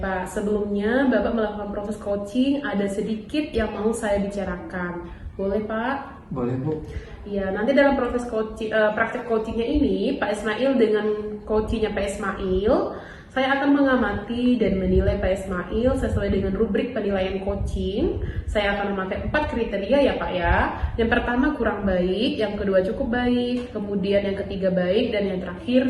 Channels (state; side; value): identical; both; correlation 1.00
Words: Pak, sebelumnya Bapak melakukan proses coaching, ada sedikit yang mau saya bicarakan. Boleh Pak? Boleh Bu. Ya, nanti dalam proses coaching, praktek coachingnya ini, Pak Ismail dengan coachingnya Pak Ismail, saya akan mengamati dan menilai Pak Ismail sesuai dengan rubrik penilaian coaching. Saya akan memakai 4 kriteria ya Pak ya. Yang pertama kurang baik, yang kedua cukup baik, kemudian yang ketiga baik, dan yang terakhir